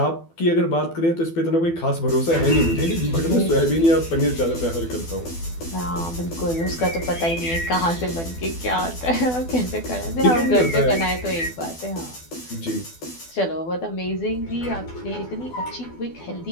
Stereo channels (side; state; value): right; late; 12 ms